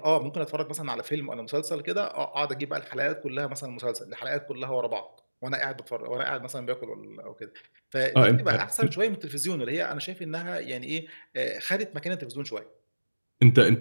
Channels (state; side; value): inverted; both; correlation -1.00